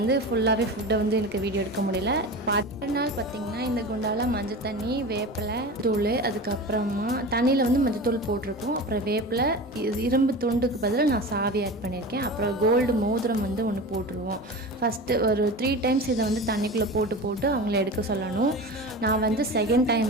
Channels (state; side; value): normal; both; correlation 0.31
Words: ஃபுல்லாகவே ஃபுட்டை வந்து எனக்கு வீடியோ எடுக்க முடியல. நாள் பார்த்திங்கன்னா இந்த குண்டால் மஞ்சள் தண்ணி, வேப்பிலை தூள், அதுக்கப்புறமா தண்ணியில் வந்து மஞ்சள் தூள் போட்டிருக்கோம். அப்புறம் வேப்பிலை, இரும்பு துண்டுக்கு பதில் நான் சாவி ஆட் பண்ணியிருக்கேன். அப்புறம் கோல்டு மோதிரம் வந்து ஒன்று போட்டுருவோம். ஃபஸ்ட்டு ஒரு 3 டைம்ஸ் இதை வந்து தண்ணிக்குள்ளே போட்டு அவங்கள எடுக்க சொல்லணும். நான் வந்து செகண்ட் டைம்